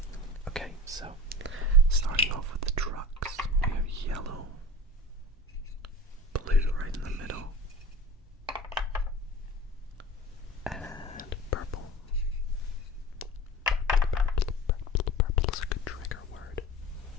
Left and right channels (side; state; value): both; normal; correlation 0.35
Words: Okay, so starting off with the trucks, we have yellow, blue right in the middle, and purple. Purple is a good trigger word.